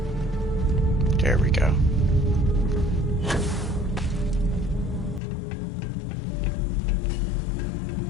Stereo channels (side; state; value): right; drops out; at 5.2 s